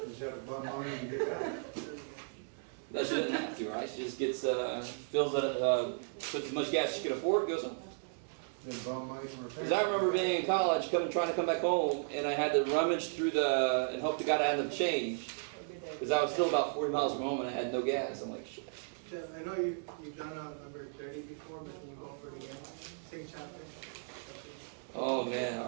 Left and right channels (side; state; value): left; silent; digital silence